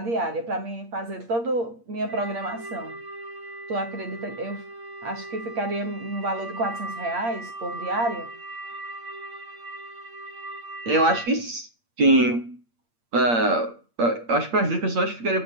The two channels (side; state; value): left; late; 8.6 ms